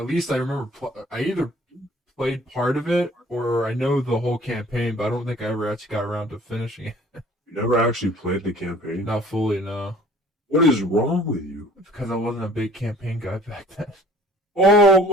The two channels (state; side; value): normal; both; correlation 0.52